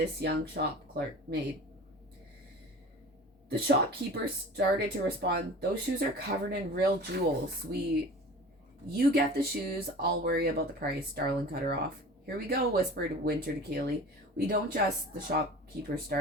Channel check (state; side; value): normal; both; correlation 0.39